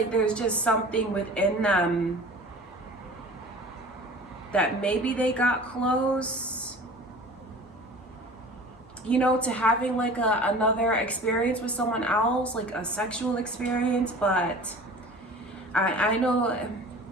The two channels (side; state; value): both; normal; correlation 0.41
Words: there's just something within them that maybe they got close, you know, to having like another experience with someone else, like a sexual experience. But I know,